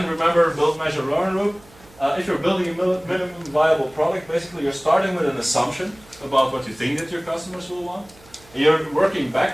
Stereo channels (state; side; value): noise; right; hum, 26 dB below the sound